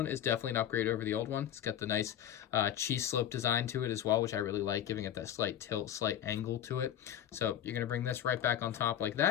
is definitely an upgrade over the old one. It's got the nice cheese slope design to it as well, which I really like, giving it that slight tilt, slight angle to it. So you're going to bring this right back on top like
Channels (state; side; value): quieter; right; 10.6 dB